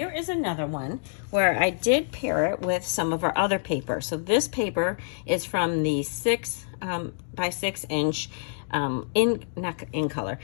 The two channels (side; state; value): right; silent; digital silence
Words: is another one where I did pair it with some of our other paper. So this paper is from the 6 by 6 inch